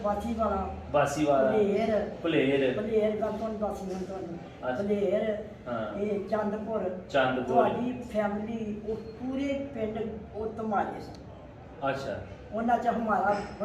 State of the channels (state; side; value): identical; both; correlation 1.00